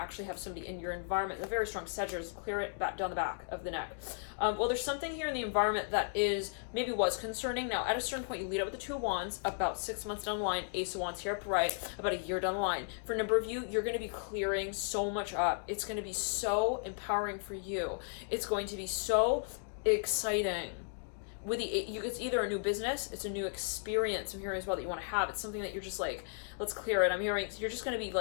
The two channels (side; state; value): right; silent; digital silence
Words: have somebody in your environment, a very strong Sagittarius. Clear it back down the back of the neck. Well, there's something here in the environment that maybe was concerning. Now, at a certain point, you lead up with the 2 of Wands, about 6 months down the line, Ace of Wands here upright, about a year down the line. For a number of you, you're going to be clearing so much up. It's going to be so empowering for you. It's going to be so exciting. With it's either a new business, it's a new experience I'm hearing as well that you want to have. It's something that you're just like, let's clear it. I'm hearing you're just going to be